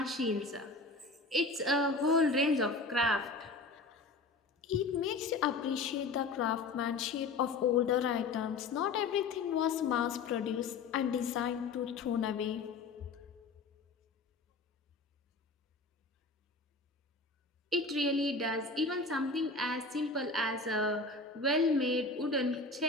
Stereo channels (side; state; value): right; quieter; 3.7 dB